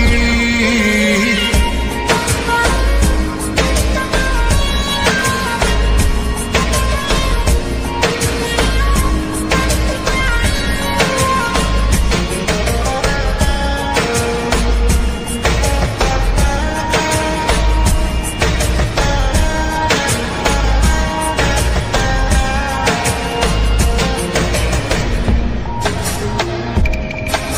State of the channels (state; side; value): identical; both; correlation 1.00